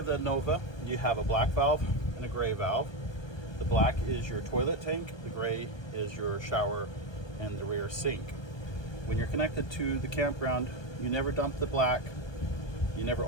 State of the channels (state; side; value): late; right; 1.2 ms